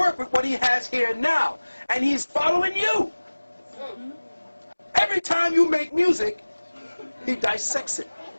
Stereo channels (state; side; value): inverted; both; correlation -1.00